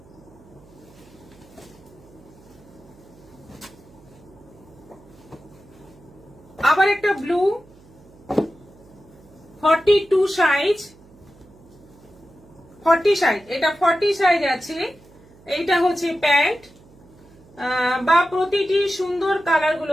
আবার একটা ব্লু, 42 সাইজ, 40 সাইজ। এটা 40 সাইজ আছে। এইটা হচ্ছে প্যান্ট, বা প্রতিটি সুন্দর কালার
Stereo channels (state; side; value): noise; right; hum, 25 dB below the sound